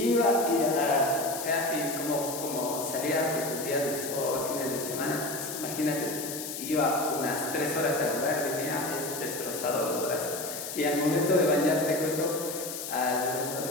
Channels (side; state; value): left; noise; hiss, 7 dB below the sound